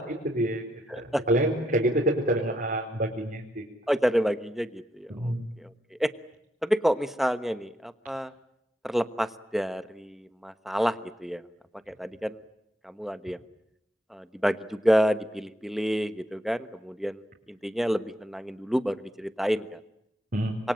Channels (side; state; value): both; normal; correlation 0.79